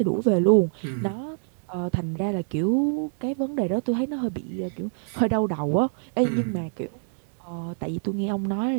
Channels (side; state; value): left; silent; 61 dB below the other